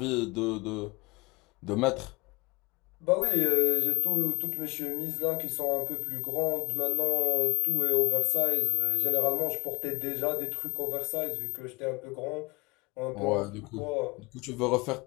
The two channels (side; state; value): right; quieter; 27.4 dB